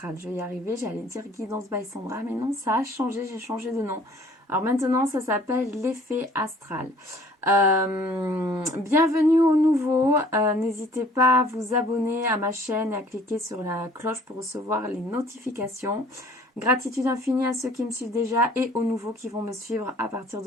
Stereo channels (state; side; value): normal; both; correlation 0.54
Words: Je vais y arriver, j'allais dire Guidance by Sandra, mais non, ça a changé, j'ai changé de nom. Alors maintenant, ça s'appelle l'effet astral. Bienvenue aux nouveaux, n'hésitez pas à vous abonner à ma chaîne et à cliquer sur la cloche pour recevoir les notifications. Gratitude infinie à ceux qui me suivent déjà et aux nouveaux qui vont me suivre à partir